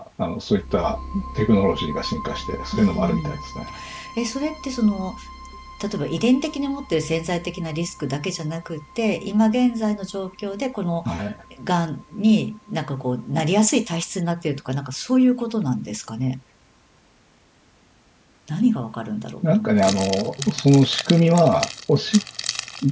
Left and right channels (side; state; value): both; identical; correlation 1.00